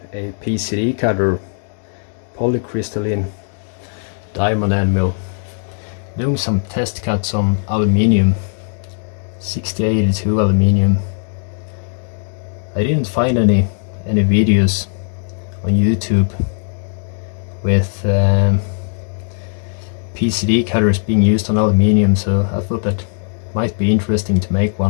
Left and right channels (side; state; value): right; silent; 59 dB below the other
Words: a PCD cutter, polycrystaline diamond end mill. Doing some test cuts on aluminium, 6082 aluminium. I didn't find any videos on YouTube with PCD cutters being used on aluminium, so I thought that might be interesting to make